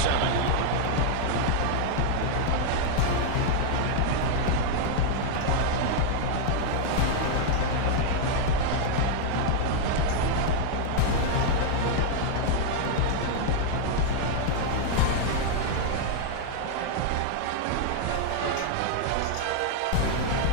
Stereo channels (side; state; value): both; different; correlation -0.01